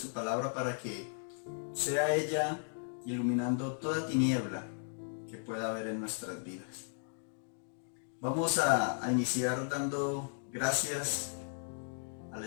palabra para que sea ella iluminando toda tiniebla que pueda haber en nuestras vidas. Vamos a iniciar dando gracias al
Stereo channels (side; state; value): right; silent; digital silence